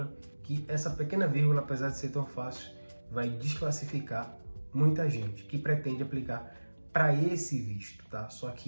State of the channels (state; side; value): inverted; both; correlation -1.00